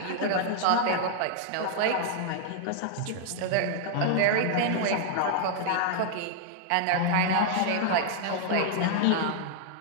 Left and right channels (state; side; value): different; both; correlation -0.01